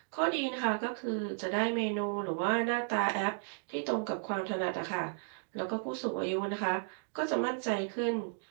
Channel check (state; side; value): silent; left; digital silence